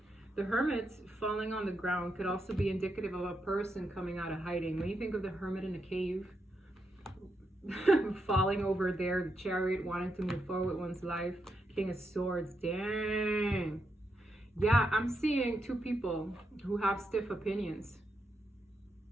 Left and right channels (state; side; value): normal; both; correlation 0.83